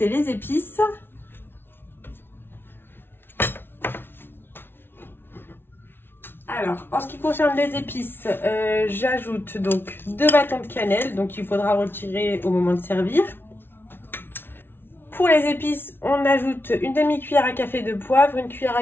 les épices. Alors, en ce qui concerne les épices, j'ajoute donc 2 bâtons de cannelle, donc il faudra retirer au moment de servir. Pour les épices, on ajoute une demi-cuillère à café de poivre, une cuillère à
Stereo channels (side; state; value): right; late; 0.11 ms